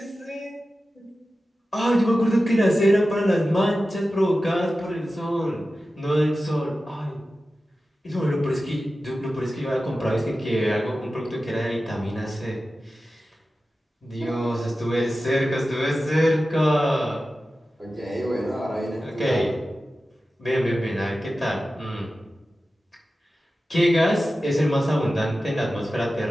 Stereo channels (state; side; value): normal; both; correlation 0.94